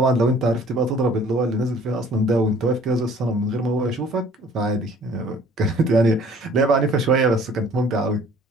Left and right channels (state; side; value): normal; both; correlation 0.54